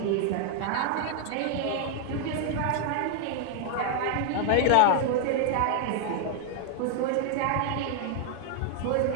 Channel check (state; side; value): different; both; correlation 0.00